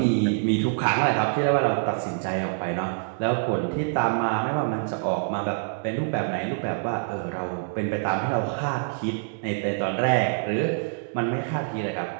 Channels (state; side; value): silent; left; digital silence